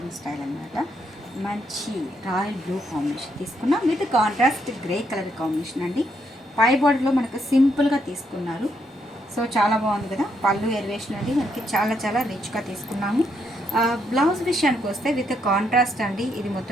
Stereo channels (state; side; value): normal; both; correlation 0.76